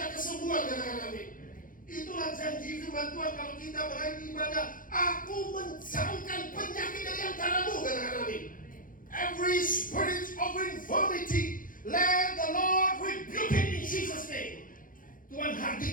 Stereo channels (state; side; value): late; right; 0.40 ms